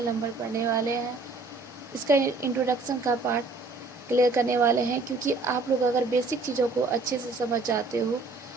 नंबर पढ़ने वाले हैं। इसका इंट्रोडक्शन का पार्ट क्लियर करने वाले हैं, क्योंकि आप लोग अगर बेसिक चीज़ों को अच्छे से समझ जाते हो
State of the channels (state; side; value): quieter; left; 3.7 dB